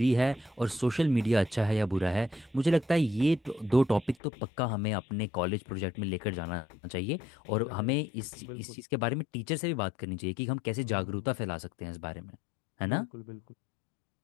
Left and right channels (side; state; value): right; drops out; at 4.2 s